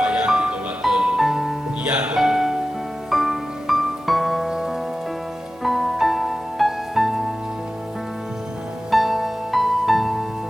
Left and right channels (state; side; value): normal; both; correlation 0.95